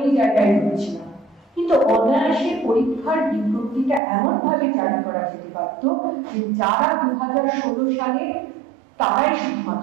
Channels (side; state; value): left; drops out; at 4.0 s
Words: জায়গায় রয়েছিলাম, কিন্তু অনায়াসে পরীক্ষার বিজ্ঞপ্তিটা এমন ভাবে জারি করা যেতে পারত যে যারা 2016 সালে তারাই